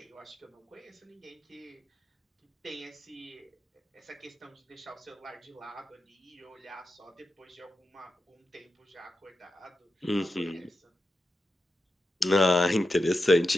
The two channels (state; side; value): normal; both; correlation 0.89